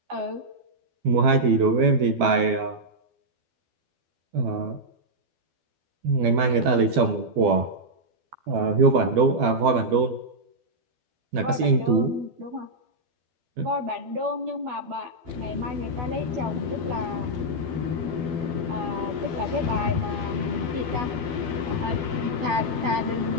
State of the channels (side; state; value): left; late; 12 ms